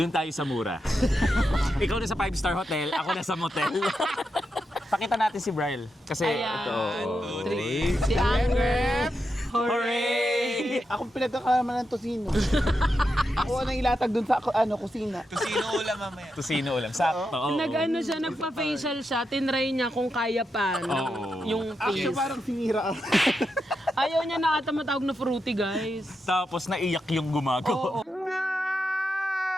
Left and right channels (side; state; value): both; normal; correlation 0.86